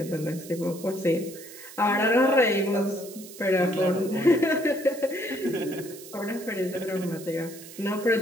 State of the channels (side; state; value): right; noise; hiss, 16 dB below the sound